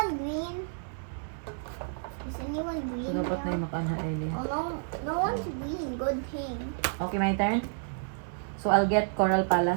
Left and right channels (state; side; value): silent; left; 58 dB below the other